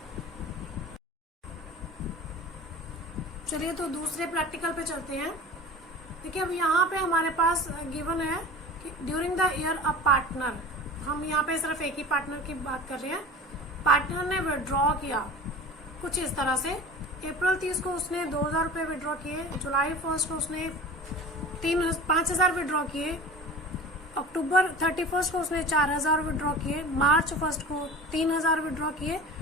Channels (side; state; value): both; normal; correlation 0.37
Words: चलिए तो दूसरे प्रैक्टिकल पे चलते हैं। देखिए अब यहाँ पे हमारे पास गिवन है कि during the year a partner, हम यहाँ पे सिर्फ एक ही पार्टनर की बात कर रहे हैं। पार्टनर ने विड्रॉ किया कुछ इस तरह से, अप्रैल 30 को उसने 2000 रुपये विड्रॉ किए, जुलाई 1 को उसने 5,000 विड्रॉ किए, अक्टूबर 31 को उसने 4,000 विड्रॉ किए, मार्च 1 को 3,000 विड्रॉ किए